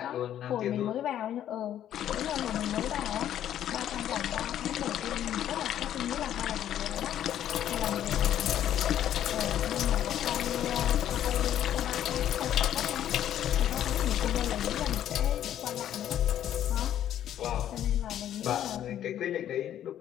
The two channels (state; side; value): quieter; right; 11.1 dB